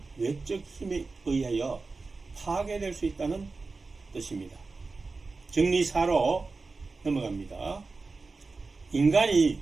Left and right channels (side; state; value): left; quieter; 3.9 dB